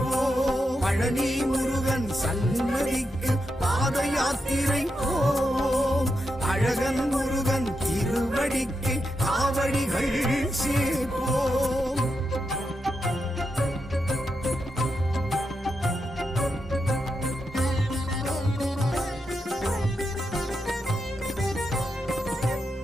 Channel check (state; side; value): normal; both; correlation 0.86